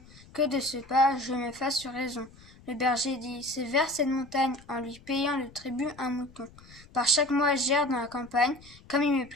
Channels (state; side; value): noise; left; rumble, 23 dB below the sound